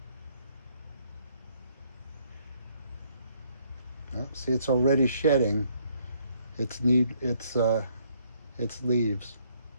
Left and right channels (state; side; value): inverted; both; correlation -0.68